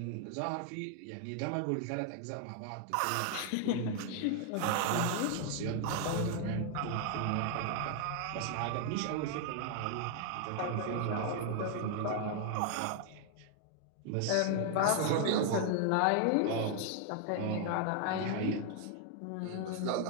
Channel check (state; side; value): different; both; correlation 0.00